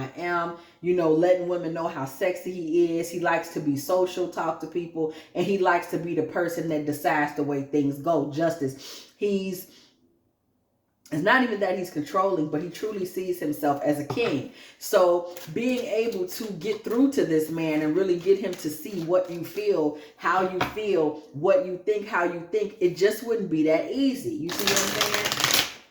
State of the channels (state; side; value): identical; both; correlation 1.00